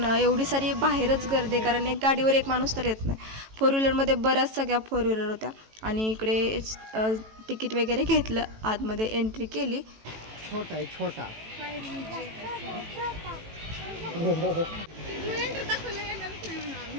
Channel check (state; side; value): late; left; 18 ms